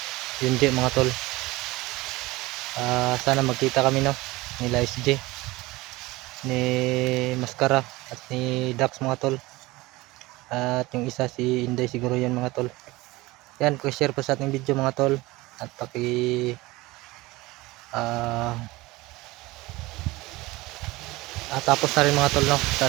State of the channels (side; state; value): left; quieter; 20.6 dB